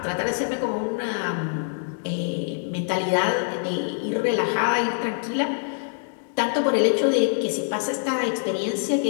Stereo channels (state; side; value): silent; right; digital silence